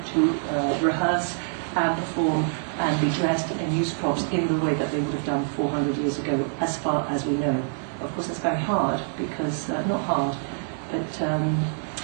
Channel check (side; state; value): left; silent; digital silence